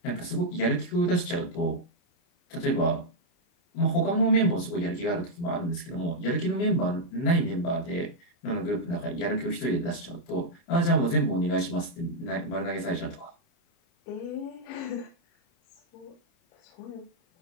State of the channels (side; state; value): right; late; 29 ms